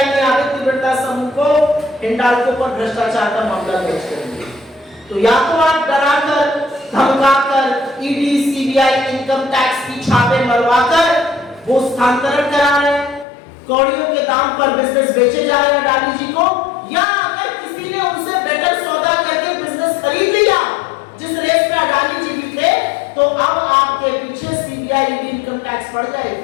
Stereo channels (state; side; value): drops out; right; at 13.2 s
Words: ने आदित्य बिरला समूह को हिंडाल्को पर भ्रष्टाचार का मामला दर्ज कर दिया। तो या तो आप डराकर धमकाकर ईडी सीबीआई इनकम टैक्स की छापे मरवाकर वो स्थानांतरण करा रहे हैं, कौड़ियों के दाम पर बिजनेस बेचे जा रहे हैं अडानी जी को, या अगर किसी ने उनसे बेटर सौदा करके बिजनेस खरीद लिया जिस रेस में अडानी जी भी थे, तो अब आपके पीछे सीबीआई ईडी इनकम टैक्स पड़